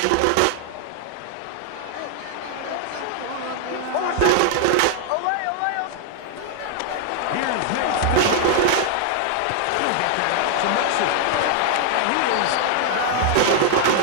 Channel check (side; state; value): both; different; correlation 0.00